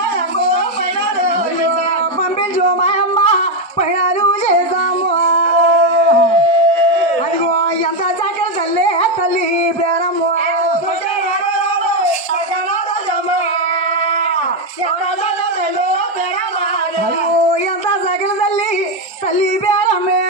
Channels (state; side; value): normal; both; correlation 0.05